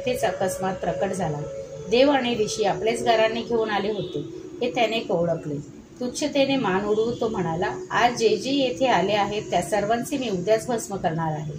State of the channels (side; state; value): both; identical; correlation 1.00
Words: अकस्मात प्रकट झाला. देव आणि ऋषी आपलेच गाराने घेऊन आले होते हे त्याने ओळखले. तुच्छतेने मान उडवून तो म्हणाला, आज जे जे येथे आले आहेत त्या सर्वांचे मी उद्याच भस्म करणार आहे.